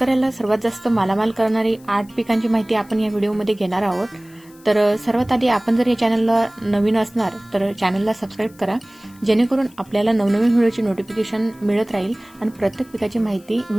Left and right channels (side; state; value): left; noise; hiss, 27 dB below the sound